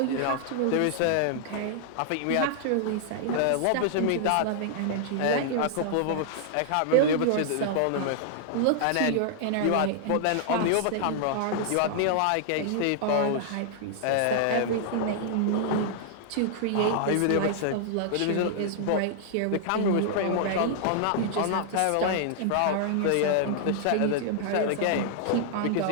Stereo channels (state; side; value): different; both; correlation -0.01